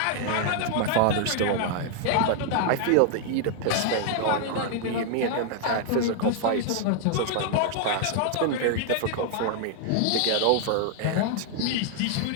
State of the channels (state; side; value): different; both; correlation 0.00